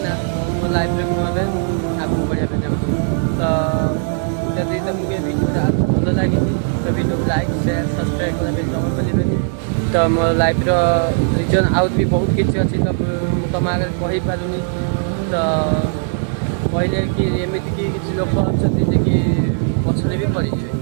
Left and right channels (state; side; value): silent; left; 64 dB below the other